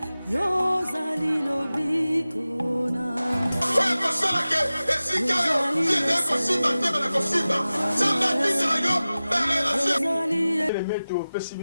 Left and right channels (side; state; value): both; inverted; correlation -0.96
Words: Yozali lobiko nanga oyo kosalaka esika yo tiende kosimba tebe na kosimba nzambe atindela yo barelation meto opesi